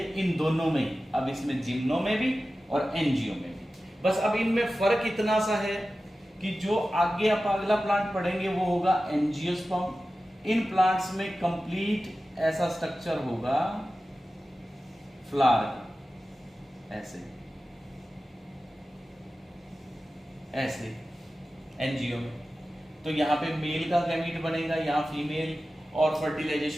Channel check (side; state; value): both; normal; correlation 0.95